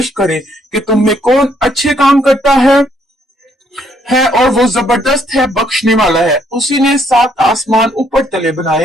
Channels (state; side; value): normal; both; correlation 0.69